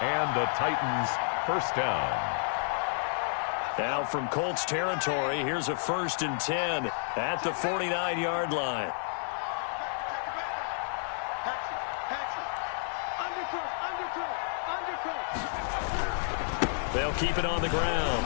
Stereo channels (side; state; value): right; silent; 57 dB below the other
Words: and the Titans first down. Now from Colts territory, here's a 1st and 10 at the 49-yard line. They'll keep it on the ground.